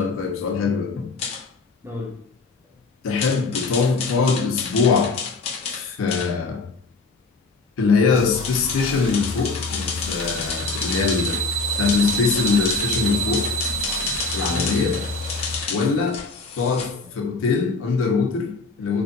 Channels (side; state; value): right; quieter; 3.8 dB